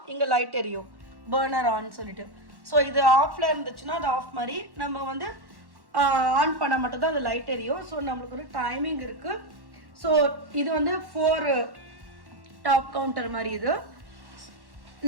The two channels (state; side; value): late; left; 1.1 ms